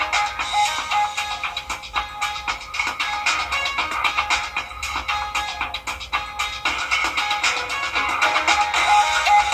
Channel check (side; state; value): both; identical; correlation 1.00